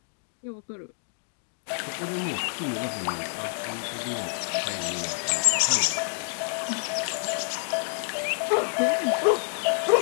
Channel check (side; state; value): right; silent; 60 dB below the other